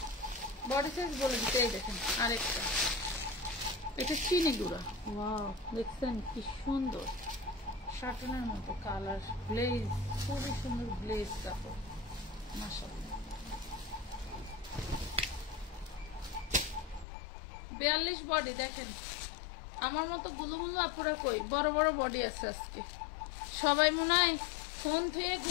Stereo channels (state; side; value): drops out; right; at 17.1 s